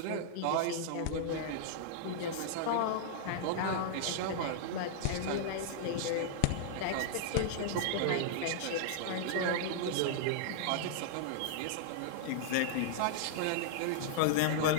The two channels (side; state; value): both; different; correlation -0.01